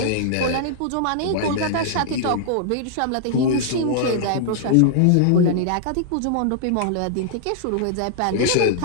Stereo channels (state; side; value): different; both; correlation -0.01